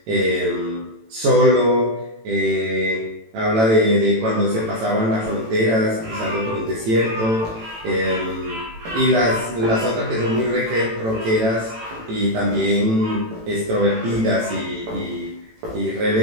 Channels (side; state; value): left; late; 18 ms